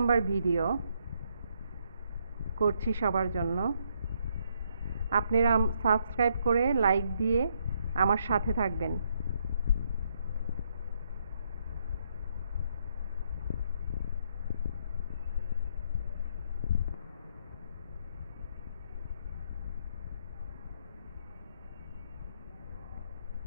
ভিডিও করছি সবার জন্য। আপনারা সাবস্ক্রাইব করে লাইক দিয়ে আমার সাথে থাকবেন।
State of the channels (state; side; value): inverted; both; correlation -0.74